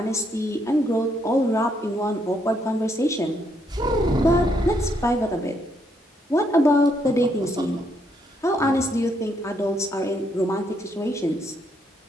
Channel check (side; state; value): both; normal; correlation 0.74